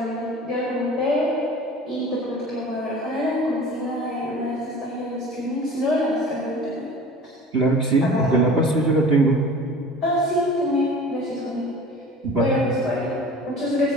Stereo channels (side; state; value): both; normal; correlation 0.42